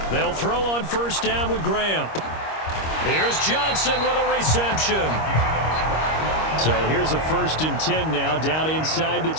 They'll throw on 1st down with Graham. Here's Johnson with a reception. So here's a 1st and 10 now, down inside the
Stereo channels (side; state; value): right; late; 25 ms